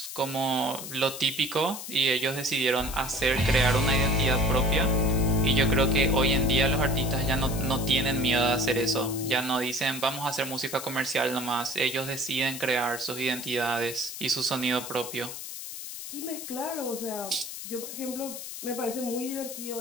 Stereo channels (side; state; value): left; noise; hiss, 9 dB below the sound